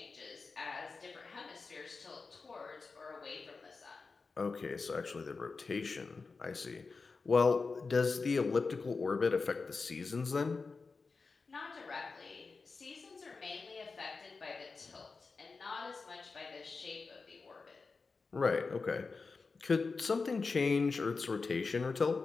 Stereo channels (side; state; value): right; quieter; 4.4 dB